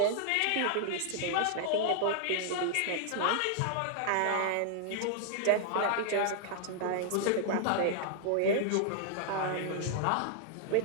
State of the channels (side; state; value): both; different; correlation -0.01